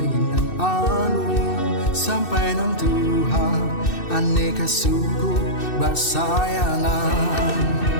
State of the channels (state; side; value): late; right; 2.6 ms